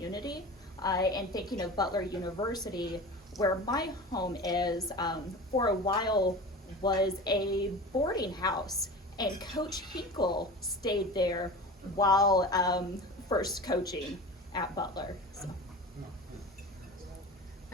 And thinking of Butler University, where my home is, for a while was a boarding house, and Coach Hinkle stayed there while first coaching at Butler. So.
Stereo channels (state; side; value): normal; both; correlation 0.33